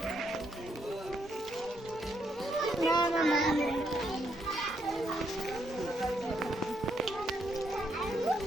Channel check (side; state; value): both; normal; correlation 0.76